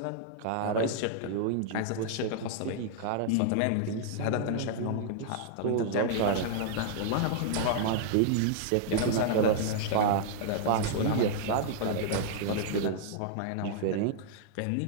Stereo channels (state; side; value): different; both; correlation -0.01